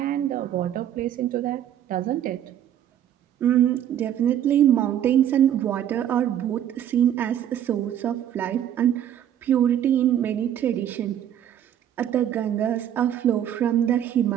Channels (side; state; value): left; quieter; 10.5 dB